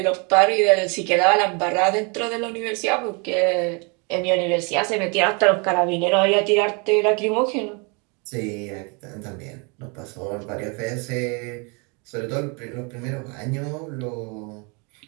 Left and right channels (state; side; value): quieter; left; 32.6 dB